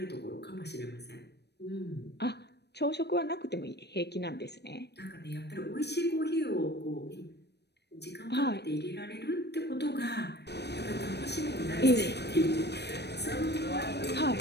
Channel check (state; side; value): late; right; 0.49 ms